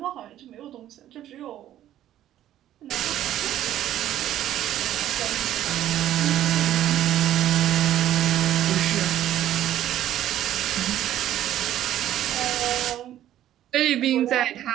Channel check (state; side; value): quieter; left; 12.3 dB